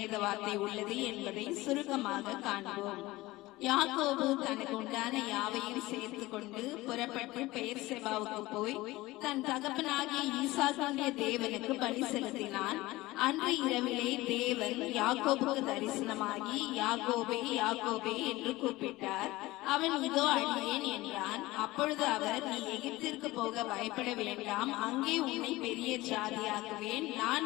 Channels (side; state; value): right; quieter; 19.1 dB